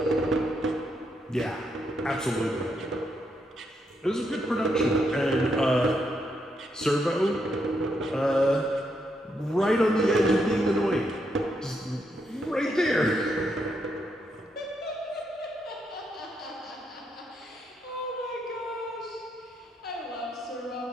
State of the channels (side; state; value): both; normal; correlation 0.79